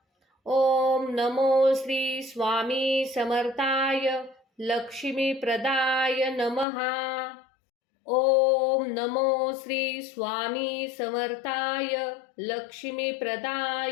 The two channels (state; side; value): drops out; right; at 6.7 s